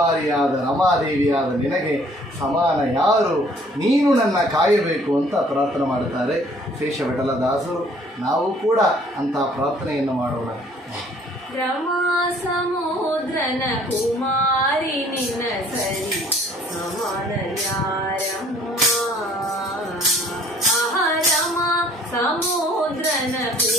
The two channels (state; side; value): normal; both; correlation 0.57